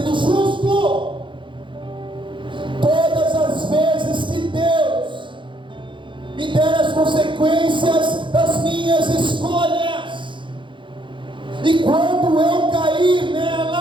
justo. Todas as vezes que Deus me der as consequências das minhas escolhas, e quando eu cair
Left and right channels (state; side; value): late; left; 0.24 ms